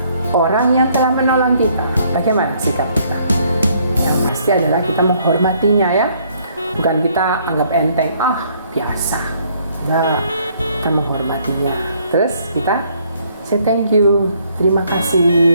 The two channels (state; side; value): inverted; both; correlation -0.66